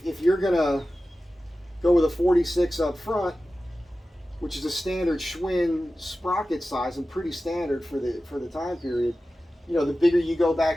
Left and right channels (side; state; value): both; normal; correlation 0.95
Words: you're going to go with a 46 up front, which is a standard Schwinn sprocket size and pretty standard for the time period, you know, the bigger you go